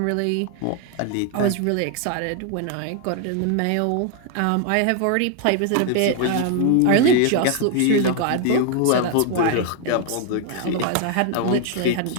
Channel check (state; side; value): different; both; correlation 0.01